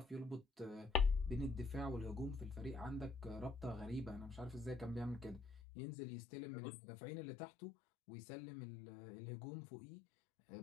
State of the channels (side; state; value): right; drops out; at 5.6 s